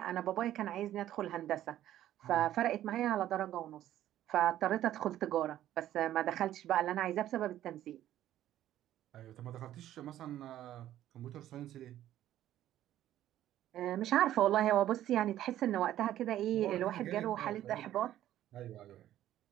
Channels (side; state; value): left; quieter; 12.7 dB